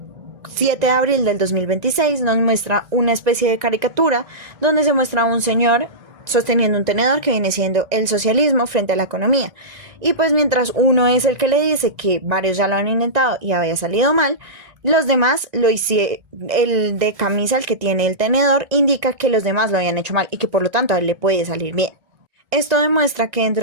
7 de abril del 2026 nos muestra una especie de caricatura donde se muestra a un señor sosteniendo un tenedor que viene siendo el socialismo frente a la economía. Y pues mientras uno es el que le dice que varios ya lo han intentado y había salido mal, los demás lo hicieron. El de camisa, el que tiene el tenedor, indica que los demás lo habían hecho mal y que por lo tanto a él le puede salir bien. Esto demuestra que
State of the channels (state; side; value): late; left; 1.6 ms